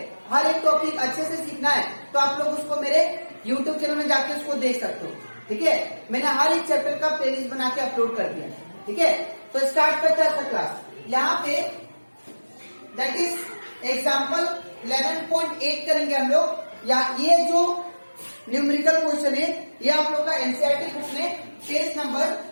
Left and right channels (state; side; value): inverted; both; correlation -1.00